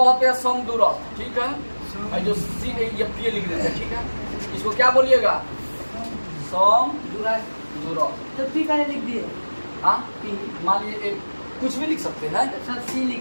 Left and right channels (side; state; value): both; inverted; correlation -1.00